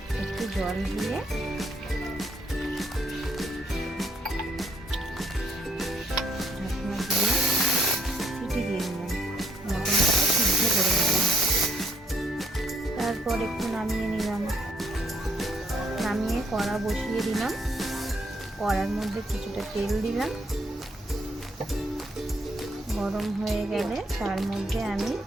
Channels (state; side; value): normal; both; correlation 0.70